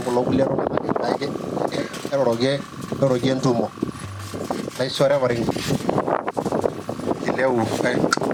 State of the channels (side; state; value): both; identical; correlation 1.00